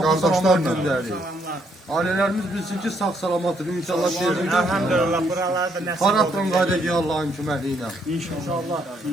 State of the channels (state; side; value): normal; both; correlation 0.72